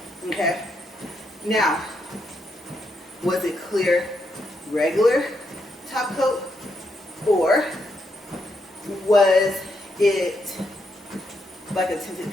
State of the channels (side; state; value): both; normal; correlation 0.79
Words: Okay. Now, was it clear, regular top coat, or was it like a